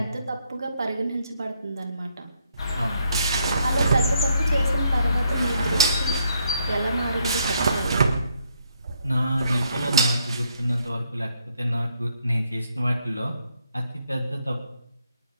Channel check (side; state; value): both; inverted; correlation -0.72